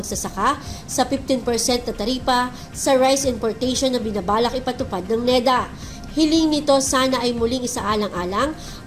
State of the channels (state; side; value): identical; both; correlation 1.00